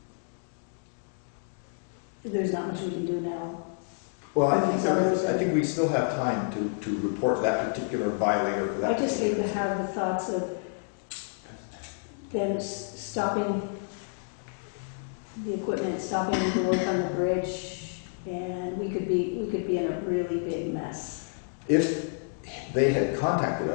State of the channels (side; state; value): right; silent; digital silence